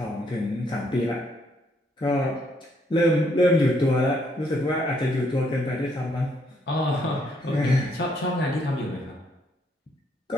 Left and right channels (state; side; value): normal; both; correlation 0.71